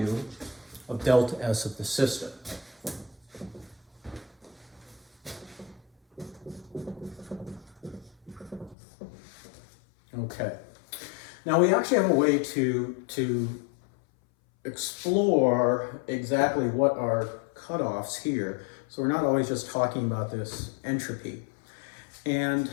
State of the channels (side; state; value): right; drops out; at 8.8 s